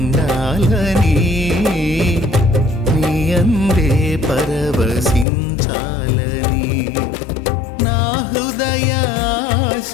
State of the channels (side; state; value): right; drops out; at 5.2 s